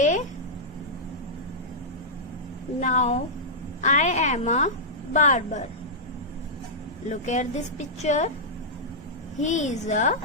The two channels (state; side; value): normal; both; correlation -0.10